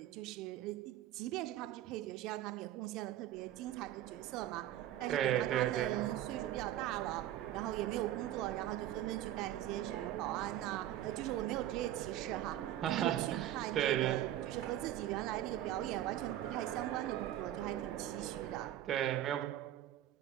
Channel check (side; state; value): left; quieter; 12.7 dB